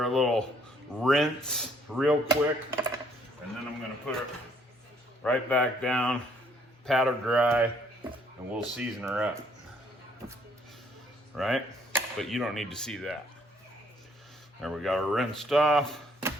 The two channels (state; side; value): normal; both; correlation 0.65